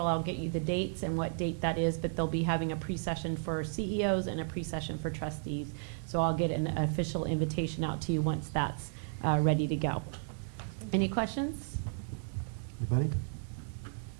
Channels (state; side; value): silent; left; 55 dB below the other